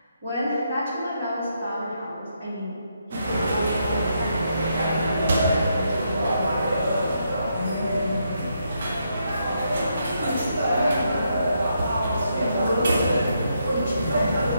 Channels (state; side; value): inverted; both; correlation -0.79